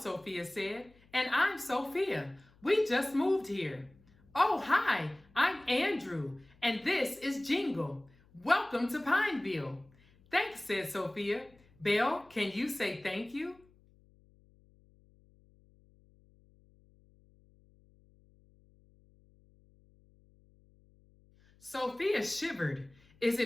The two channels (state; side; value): noise; left; hum, 29 dB below the sound